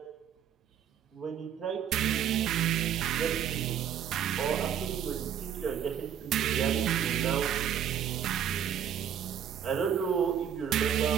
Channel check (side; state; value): left; quieter; 9.1 dB